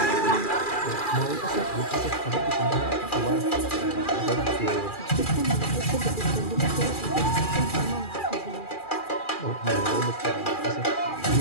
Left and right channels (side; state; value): right; late; 2.4 ms